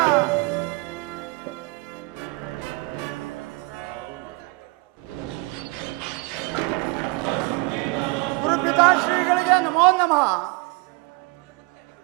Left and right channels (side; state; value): left; quieter; 26.1 dB